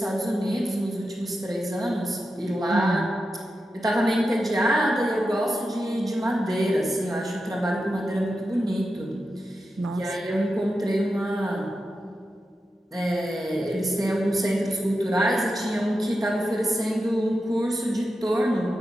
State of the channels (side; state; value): both; normal; correlation 0.90